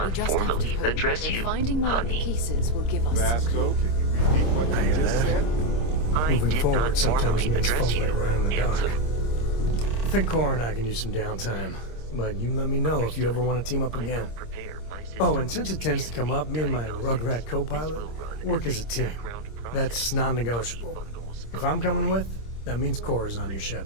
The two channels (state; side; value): late; right; 26 ms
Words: just have to formally hope address that you, finding more honey. pieces will give us. Vasco, can you repeat what you just said? I Moving did forward not sometimes formally means address fumbling you, around in the Ansel. dark. I think Cora and I can use some downtime, but you let me know if you ever want to team up again. Oh, and since it tends to come up, me and my Rugrat co-pilot work as a team. That's non-negotiable. If I'm coming with, that means Cora's on your ship.